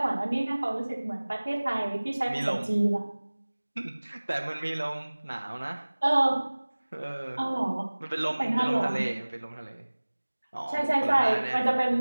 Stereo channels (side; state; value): both; inverted; correlation -1.00